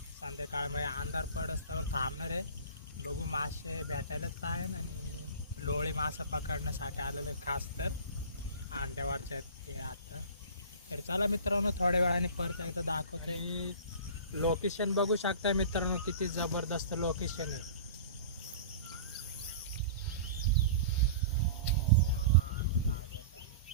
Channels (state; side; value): inverted; both; correlation -0.38